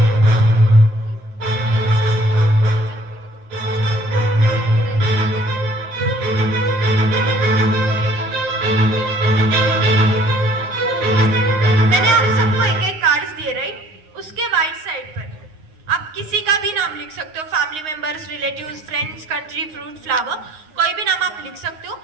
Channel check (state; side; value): late; left; 9.6 ms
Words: मैंने आप सबको एक एक कार्ड्स दिए, राइट? उसके राइट साइड पर आप किसी का भी नाम लिख सकते हो, family members, relatives, friends, country, fruit, flower, कोई भी नाम आप लिख सकते हो।